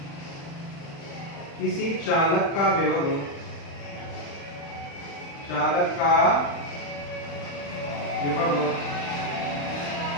किसी चालक का विभव,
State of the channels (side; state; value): right; late; 35 ms